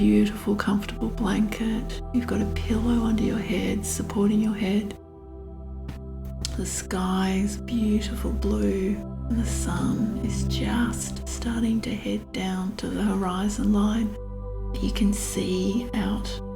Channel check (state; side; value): identical; both; correlation 1.00